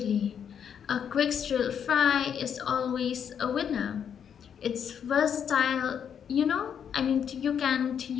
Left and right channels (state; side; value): quieter; right; 8.1 dB